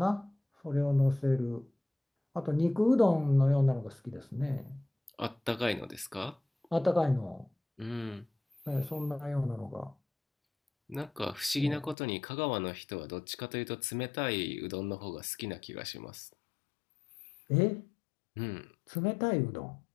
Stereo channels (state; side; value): drops out; right; at 12.0 s